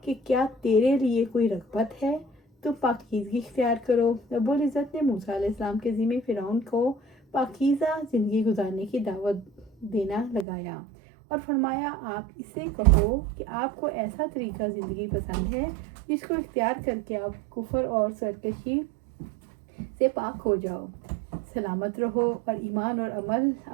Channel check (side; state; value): left; drops out; at 10.5 s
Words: کہ کیا تیرے لیے کوئی رغبت ہے، تم پاکیزگی اختیار کرو۔ رب العزت نے موسیٰ علیہ السلام کے ذمہ فرعون کو پاکیزہ زندگی گزارنے کی دعوت دینا لگایا اور فرمایا، آپ اسے کہو کہ آپ کو ایسا طریقہ زندگی پسند ہے جس کو اختیار کر کے آپ کفر اور سرکشی سے پاک ہو جاؤ، سلامت رہو اور ایمان اور